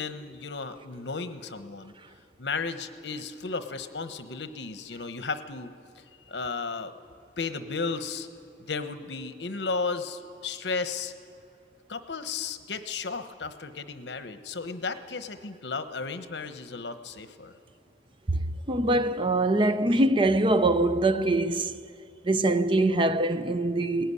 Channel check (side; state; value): both; normal; correlation 0.44